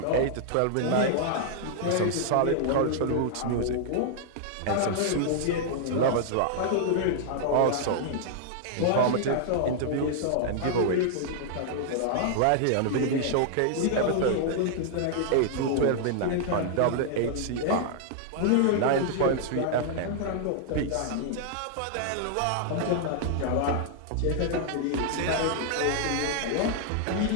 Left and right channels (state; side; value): different; both; correlation -0.01